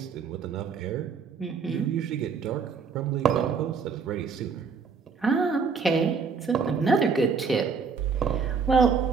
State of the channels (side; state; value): left; quieter; 5.5 dB